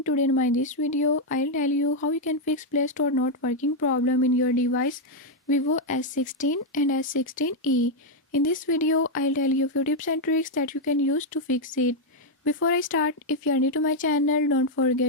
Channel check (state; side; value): normal; both; correlation 0.00